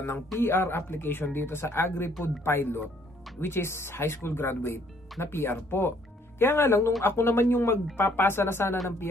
ng PR application dito sa Agri-Food Pilot, which is high school graduate na PR po. Kaya nga lang, nung ako naman yung magpapasa na sana ng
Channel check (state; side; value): normal; both; correlation 0.64